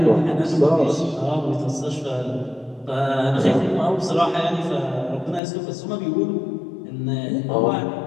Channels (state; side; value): drops out; right; at 5.4 s